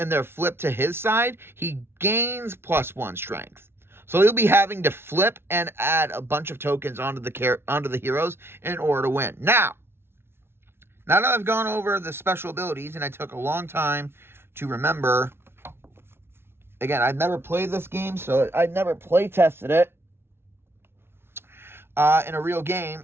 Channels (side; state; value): left; late; 0.12 ms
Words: they're flipped to his side, he gains +1 strength. So he'll be having to flip and add a bunch of tokens onto the heroes in order to win. Now that I've gone over the special abilities, and I took a long time to remember. Again, I've never played this game, so I never play tested it in a real game.